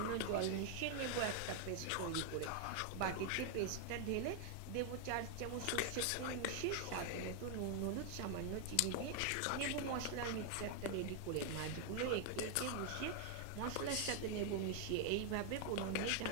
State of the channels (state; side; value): different; both; correlation 0.00